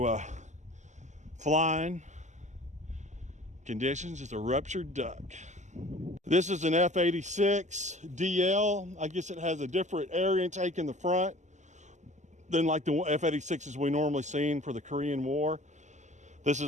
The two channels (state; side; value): late; left; 0.34 ms